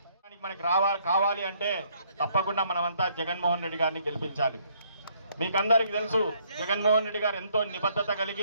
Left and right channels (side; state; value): both; inverted; correlation -0.67